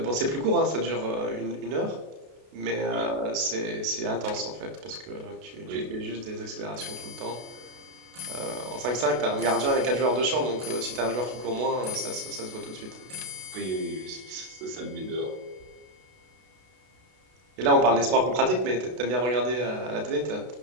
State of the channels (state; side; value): late; left; 32 ms